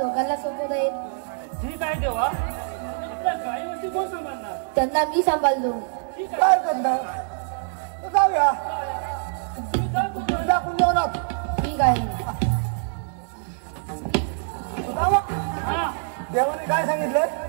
सोपवत आहे. ठीक आहे देवा. आपल्या गायीवरती कोण सांभाळणार? त्यांना मी सांभाळलो. काय करणार? जाऊया. दाखवून देऊ ना. ठीक आहे. देवाने काय सांगितलं?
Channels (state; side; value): silent; left; digital silence